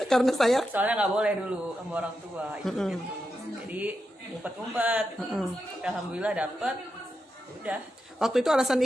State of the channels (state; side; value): normal; both; correlation 0.87